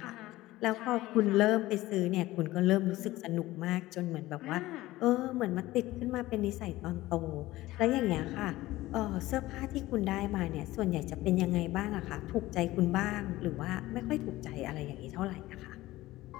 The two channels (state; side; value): quieter; right; 17.4 dB